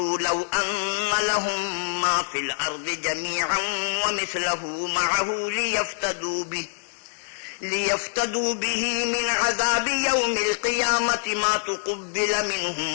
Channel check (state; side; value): silent; right; digital silence